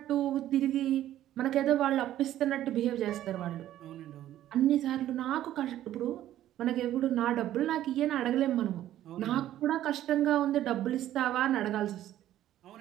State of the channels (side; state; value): left; quieter; 12.8 dB